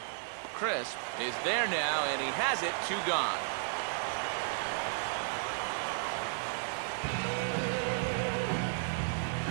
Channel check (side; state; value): left; silent; digital silence